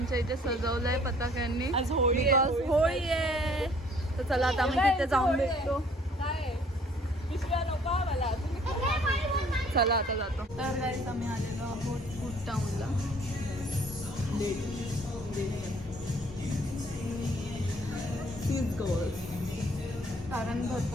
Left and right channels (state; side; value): normal; both; correlation 0.58